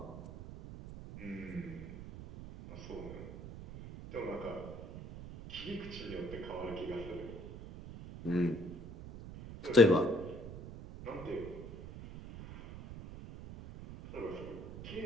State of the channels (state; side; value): noise; right; rumble, 11 dB below the sound